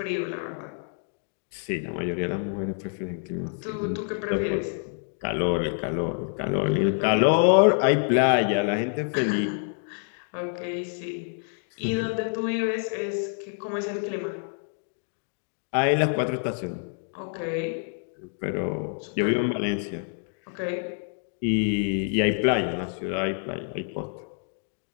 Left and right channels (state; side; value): silent; right; 60 dB below the other